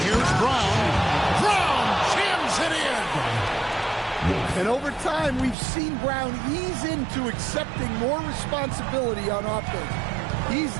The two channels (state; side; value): drops out; left; at 5.6 s